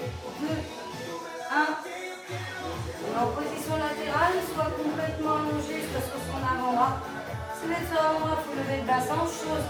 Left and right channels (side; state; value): both; identical; correlation 1.00